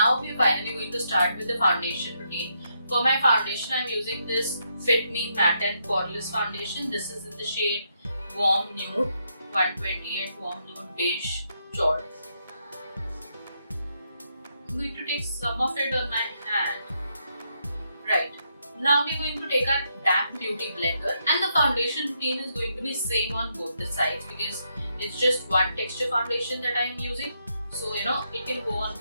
we're finally going to start with the foundation routine. For my foundation, I'm using this Fit Me Matte and Poreless foundation. This is in the shade Warm Nude, 128 Warm Nude Beige Chaud. I'm going to take some of it on my hand. Right. Now we're going to take our damp beauty blender, and the foundation routine is going to be same on both the sides, because it's just one texture foundation that I'm using. So it can go on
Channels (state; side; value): inverted; both; correlation -0.79